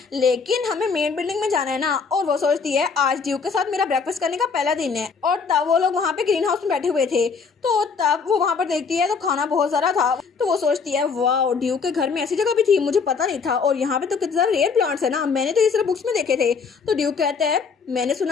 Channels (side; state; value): right; quieter; 5.3 dB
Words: लेकिन हमें मेन बिल्डिंग में जाना है ना। और वो सोचती है आज ड्यूक के साथ मेरा ब्रेकफास्ट करने का पहला दिन है। और तब वो लोग वहाँ पे ग्रीन हाउस में बैठे हुए थे। तो तब वो वहाँ पर देखती है तो खाना बहुत सारा था। तो वो सोचती है वाह ड्यूक के घर में ऐसी जगह भी थी मुझे पता नहीं था और यहाँ पे तो कितने सारे रेयर प्लांट्स है ना, मैंने तो ये सिर्फ बुक्स में देखे थे। तो ड्यूक कहता है मैंने